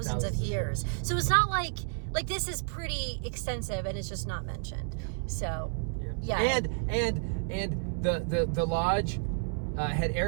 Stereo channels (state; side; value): silent; left; 57 dB below the other